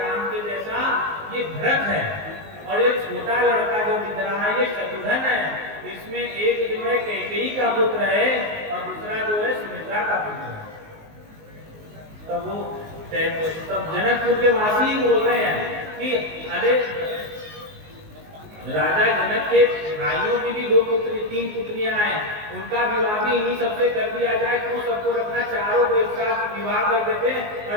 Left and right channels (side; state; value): left; late; 19 ms